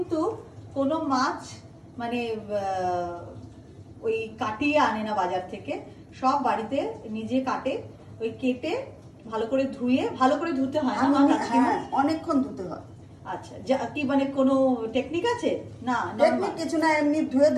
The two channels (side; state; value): both; identical; correlation 1.00